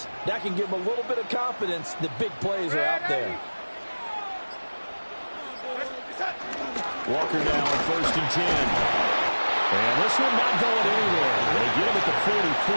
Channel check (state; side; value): inverted; both; correlation -1.00